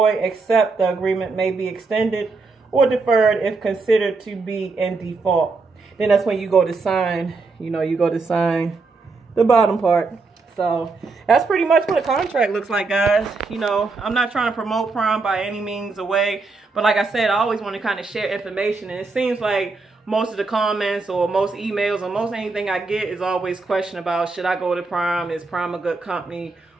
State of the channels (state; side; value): quieter; left; 3.9 dB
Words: except the agreement may be extended or deferred if considered to be in default. Then that's when you go to sign, you know, you go to sign the bottom part. So that's pretty much what a contract looks like, guys. You know, I'm not trying to promote Prom by any means away, but like I said, I always want to kind of share information, and it seems like most of the comments or most emails or most anything I get is always question about, should I go to Prom? Is Prom a good company?